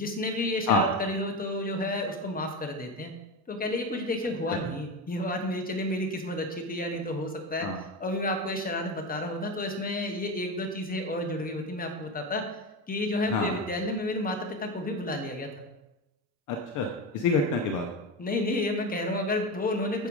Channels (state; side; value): normal; both; correlation 0.20